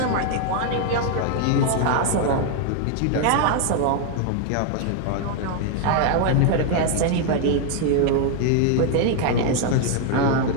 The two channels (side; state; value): both; different; correlation 0.00